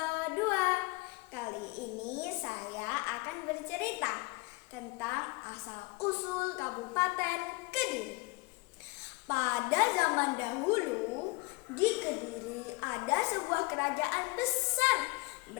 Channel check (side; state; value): right; quieter; 25.6 dB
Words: 2. Kali ini saya akan bercerita tentang asal-usul Kabupaten Kediri. Pada zaman dahulu, di Kediri ada sebuah kerajaan besar